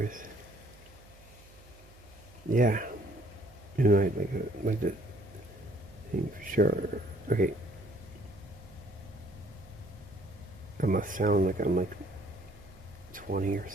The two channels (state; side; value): noise; right; hum, 23 dB below the sound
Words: Yeah. You know, like the thing for sure. Okay. I must sound like I'm like 20 or